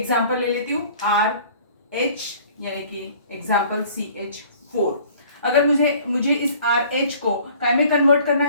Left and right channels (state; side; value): inverted; both; correlation -0.52